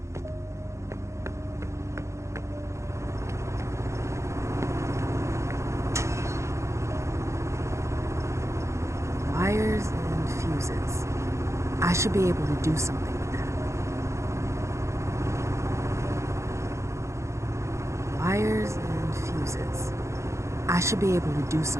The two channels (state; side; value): late; left; 0.14 ms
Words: Wires and fuses. I should be able to do something with that. Wires and fuses. I should be able to do